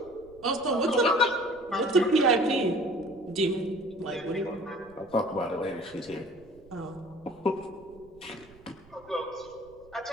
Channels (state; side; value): noise; right; rumble, 25 dB below the sound